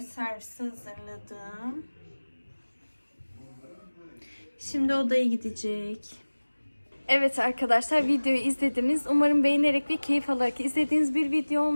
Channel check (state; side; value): inverted; both; correlation -1.00